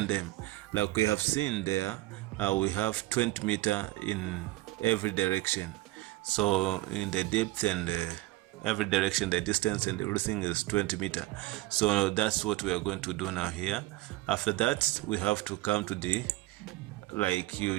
them like we have seen there. We have 20 meter in every direction, so in the depth and every direction, the distance and everything is 20 meter. So that's what we are going to do now here. After that, we have to come to the, like,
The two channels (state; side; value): quieter; left; 18.8 dB